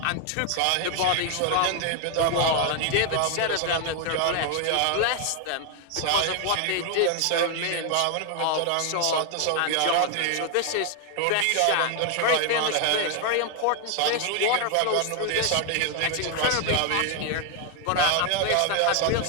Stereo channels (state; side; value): different; both; correlation 0.00